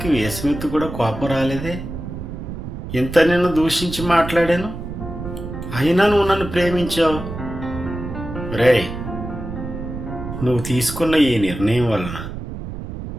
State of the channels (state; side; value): noise; right; rumble, 8 dB below the sound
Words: వేసమెత్తు కూడా కోపం రాలేదే. ఇంత నిన్ను దూషించి మాట్లాడాను, అయినా నువ్వు నన్ను ప్రేమించావు. రేయ్, నువ్వు తీసుకున్న ఈ నిర్ణయం వలన